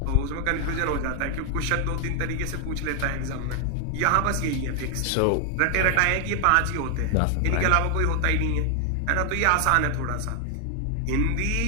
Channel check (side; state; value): both; different; correlation 0.00